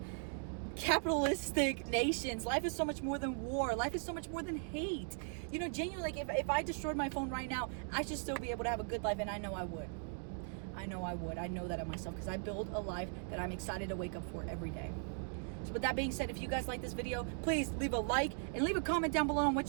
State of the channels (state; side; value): silent; left; 52 dB below the other